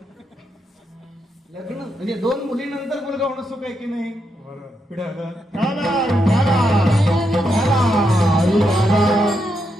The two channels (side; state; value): both; normal; correlation 0.82